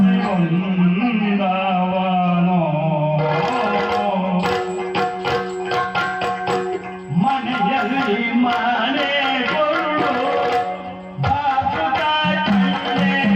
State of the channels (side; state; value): both; identical; correlation 1.00